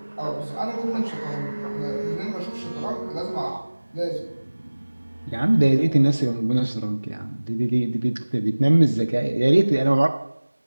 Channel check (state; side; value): inverted; both; correlation -1.00